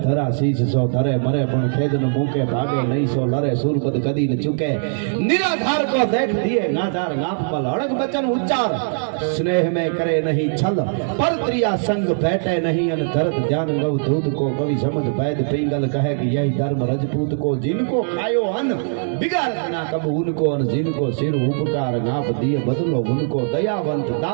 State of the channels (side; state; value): left; silent; digital silence